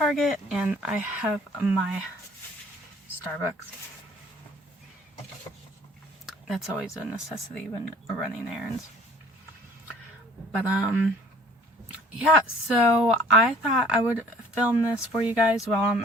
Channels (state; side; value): normal; both; correlation 0.53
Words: and I have my Starbucks. That's always a necessity when running errands. But yeah, so I thought I would film this for you guys while